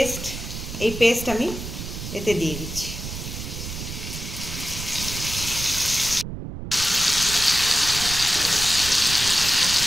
পেস্ট আমি এতে দিয়ে দিচ্ছি।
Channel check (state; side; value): noise; right; rumble, 8 dB below the sound